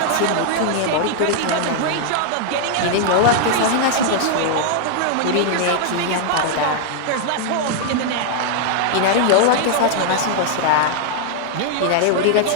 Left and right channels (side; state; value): both; different; correlation -0.01